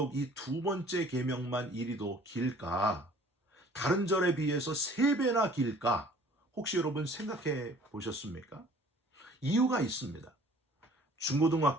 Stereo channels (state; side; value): normal; both; correlation 0.52